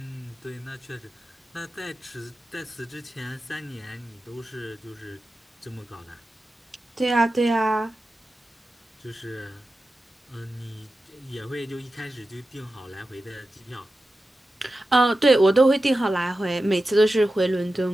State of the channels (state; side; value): normal; both; correlation 0.93